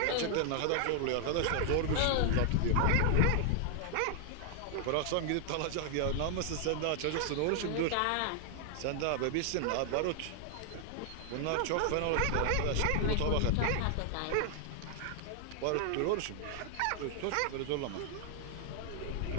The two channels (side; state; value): both; different; correlation 0.00